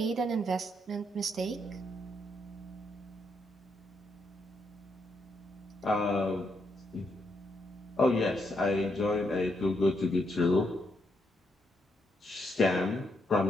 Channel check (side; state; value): both; normal; correlation 0.78